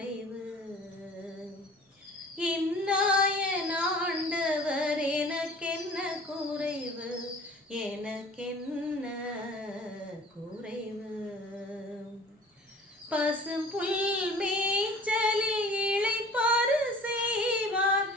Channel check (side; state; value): both; normal; correlation 0.46